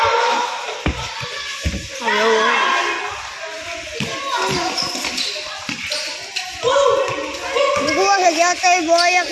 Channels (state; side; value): identical; both; correlation 1.00